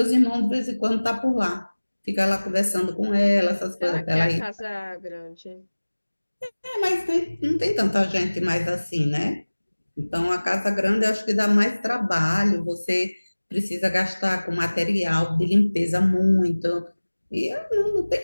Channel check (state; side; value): inverted; both; correlation -1.00